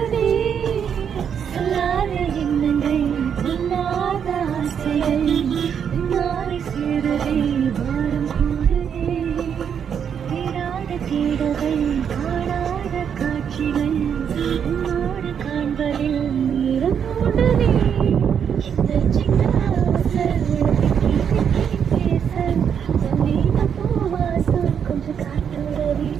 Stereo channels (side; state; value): left; quieter; 7.8 dB